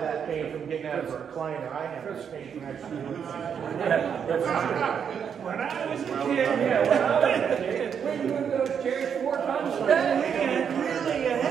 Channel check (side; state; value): left; quieter; 7.5 dB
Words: pain from getting out of a recliner. I have this pain from actually doing When I was a kid, we moved those chairs 4 times a day, and really a